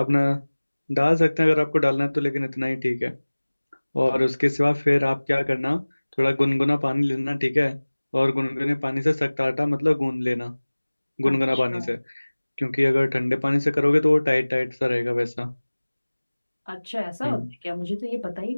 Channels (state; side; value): inverted; both; correlation -1.00